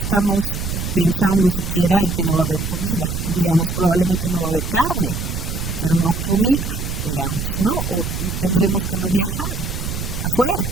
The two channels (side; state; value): right; noise; rumble, 4 dB below the sound